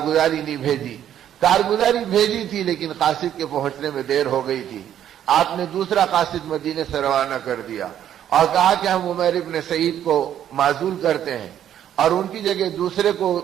نہیں بھیجی. کارگزاری بھیجی تھی لیکن قاصد کے پہنچنے میں دیر ہو گئی تھی. آپ نے دوسرا قاصد مدینے سے روانہ کر دیا اور کہا کہ ہم عمیر ابن سعید کو معزول کرتے ہیں اور ان کی جگہ دوسرے کو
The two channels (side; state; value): left; quieter; 10.6 dB